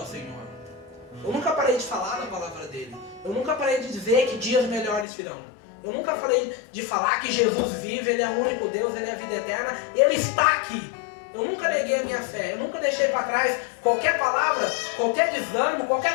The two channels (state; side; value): drops out; right; at 5.1 s